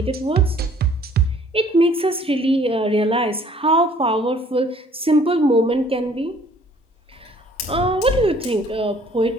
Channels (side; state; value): both; normal; correlation 0.57